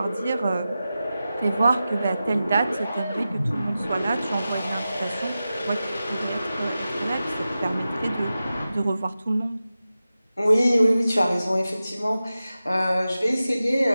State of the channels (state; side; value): inverted; both; correlation -0.93